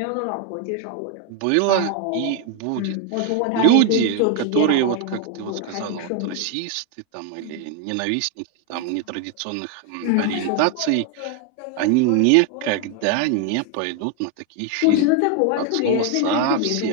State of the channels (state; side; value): different; both; correlation 0.01